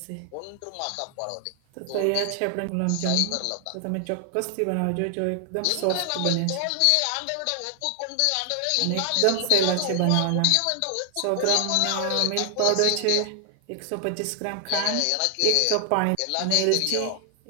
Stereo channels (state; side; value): different; both; correlation 0.00